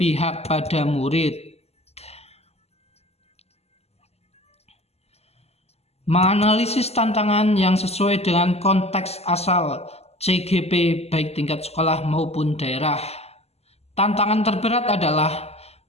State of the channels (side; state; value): right; late; 0.30 ms